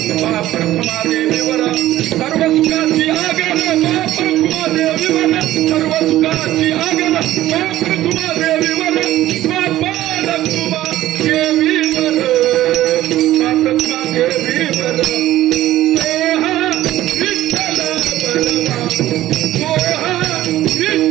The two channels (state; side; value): quieter; left; 14.5 dB